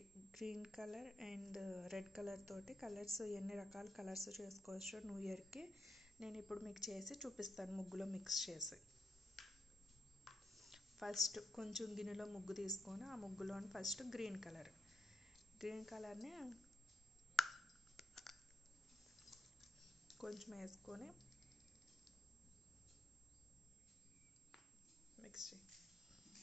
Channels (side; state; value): both; normal; correlation 0.83